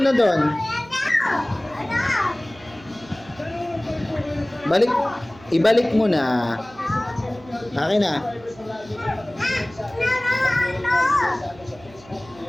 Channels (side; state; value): right; noise; hum, 22 dB below the sound